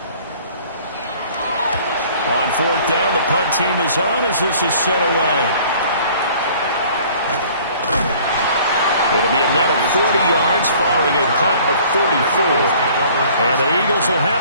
On 4th down, the punt team is on as this is sent away. It'll be a net of 40 yards following a punt of 44. And the Eagles will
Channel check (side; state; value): both; inverted; correlation -0.53